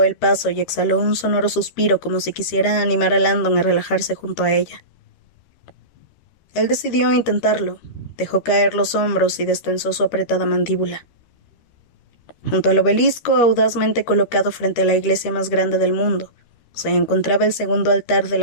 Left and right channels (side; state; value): right; late; 13 ms